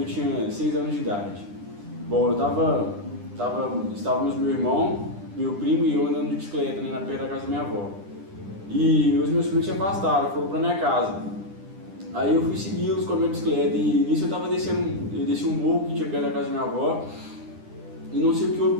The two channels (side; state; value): left; late; 9.9 ms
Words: tinha 6 anos de idade. Bom, estávamos meu irmão, meu primo e eu andando de bicicleta, né, na perto da casa da minha avó. E os meus primos se afastaram, foram para minha casa. Aí eu fui segui-los com a minha bicicleta e nisso eu desci um morro que tinha perto da casa da minha avó e não sei o que houve